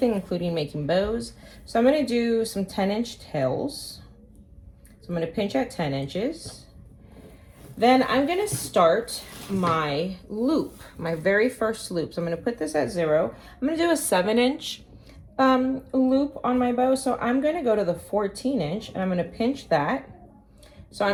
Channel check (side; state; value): both; identical; correlation 1.00